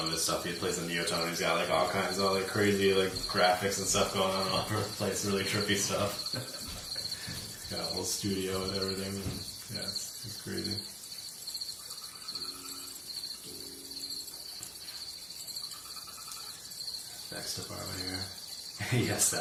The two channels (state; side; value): identical; both; correlation 1.00